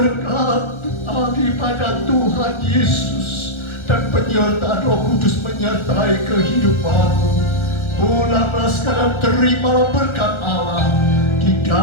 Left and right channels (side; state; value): right; late; 1.4 ms